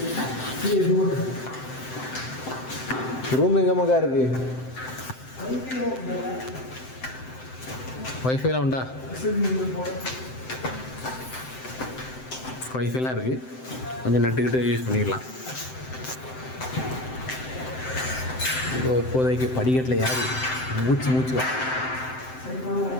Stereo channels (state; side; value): late; right; 7.8 ms